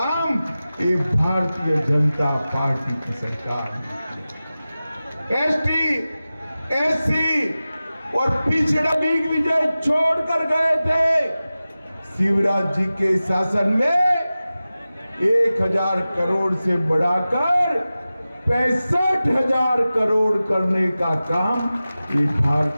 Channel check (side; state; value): both; inverted; correlation -0.96